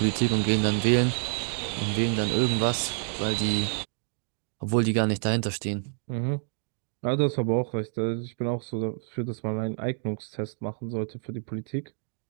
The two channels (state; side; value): silent; left; digital silence